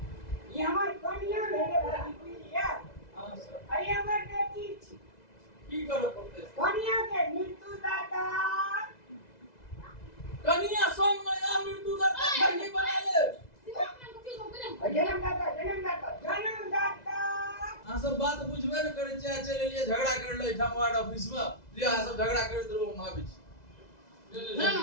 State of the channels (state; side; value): late; right; 2.0 ms